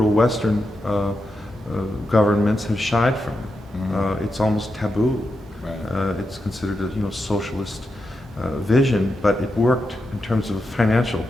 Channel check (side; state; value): both; normal; correlation 0.87